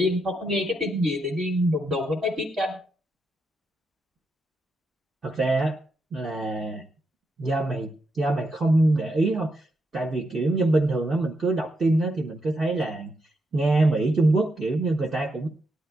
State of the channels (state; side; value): normal; both; correlation 0.82